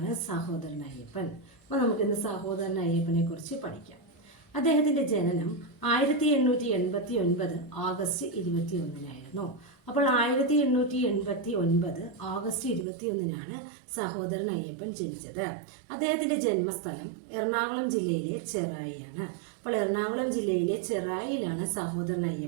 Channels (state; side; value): drops out; left; at 12.9 s